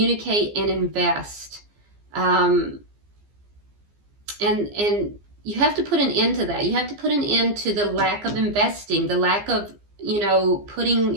and invest. And you have to put an end to that. You have to put an end to the lack of investing, the lack of, you know,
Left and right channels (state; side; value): late; left; 15 ms